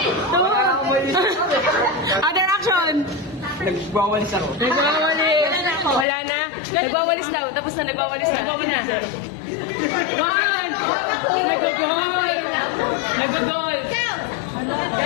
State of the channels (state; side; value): drops out; right; at 6.1 s